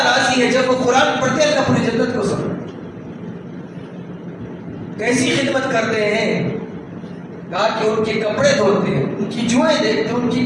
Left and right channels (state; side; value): identical; both; correlation 1.00